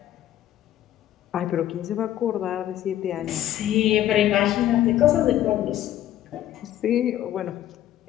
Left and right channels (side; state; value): right; quieter; 12.5 dB